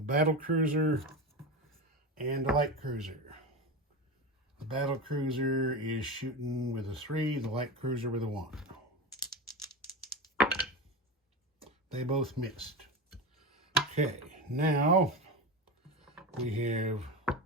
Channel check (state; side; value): normal; both; correlation 0.22